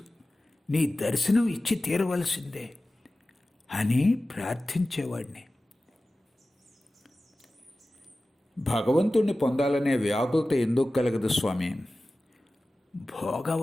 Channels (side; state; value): both; normal; correlation 0.96